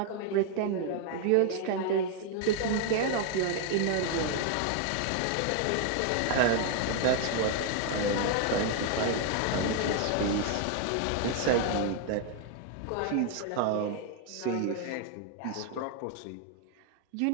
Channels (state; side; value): different; both; correlation 0.00